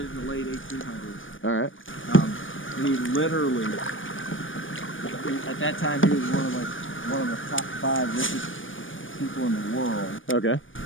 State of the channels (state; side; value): late; right; 0.57 ms